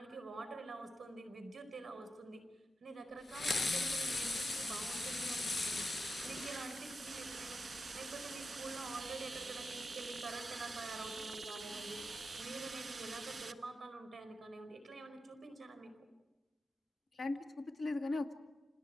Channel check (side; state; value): both; normal; correlation 0.88